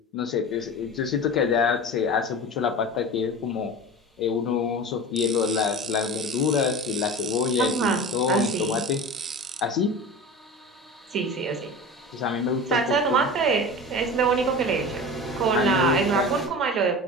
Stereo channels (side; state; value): both; normal; correlation 0.32